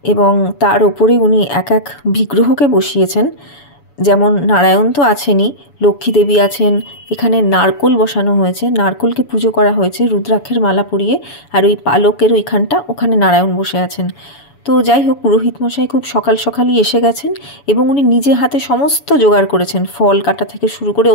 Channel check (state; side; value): late; right; 7.0 ms